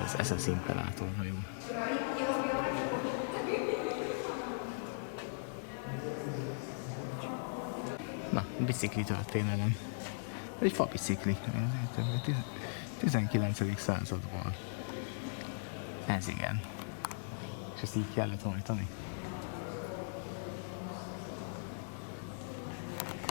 Ez az SS Imperator hajó. Na, bicikli történelem. Ez egy fabicikli. 19. századból. Ez igen. És ezt így kellett hajtani.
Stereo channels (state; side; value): silent; right; digital silence